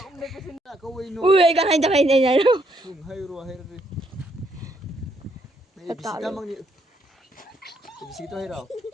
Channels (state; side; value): normal; both; correlation 0.73